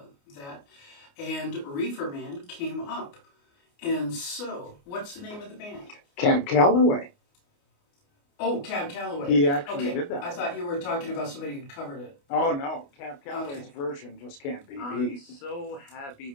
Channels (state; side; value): late; right; 29 ms